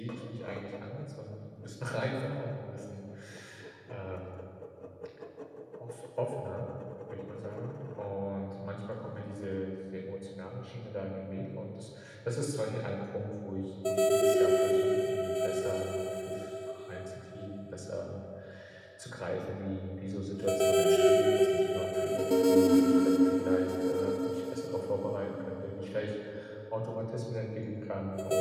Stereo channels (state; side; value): identical; both; correlation 1.00